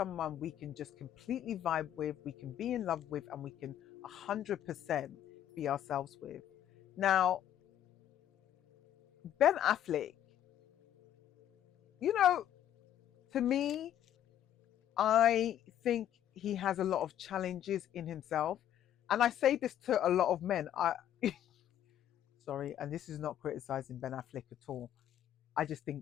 we can just completely vibe with, we can be in love with, and we can 100% be ourselves with. Now, Ben Affleck, you know, to me, I think he has a lot of challenges in himself. And I say this to a lot of men. Sorry, and this is not criticizing Ben Affleck at all. I just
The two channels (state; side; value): quieter; right; 11.0 dB